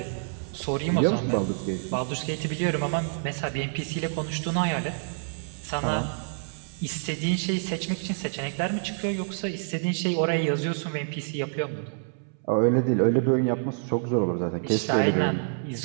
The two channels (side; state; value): left; silent; 60 dB below the other